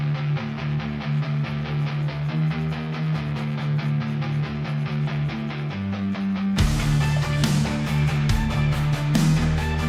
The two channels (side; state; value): both; identical; correlation 1.00